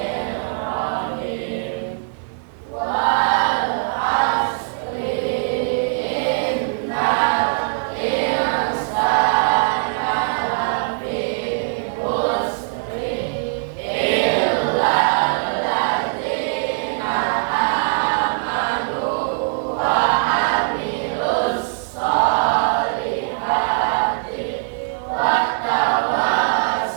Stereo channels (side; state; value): left; silent; digital silence